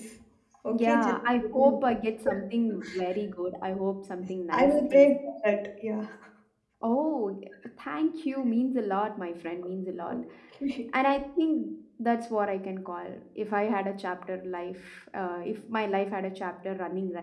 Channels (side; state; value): both; identical; correlation 1.00